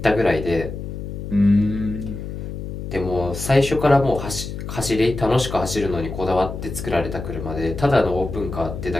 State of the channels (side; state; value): left; noise; hum, 7 dB below the sound